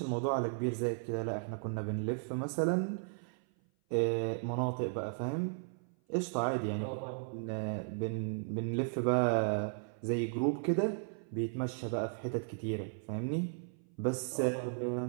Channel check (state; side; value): silent; left; 54 dB below the other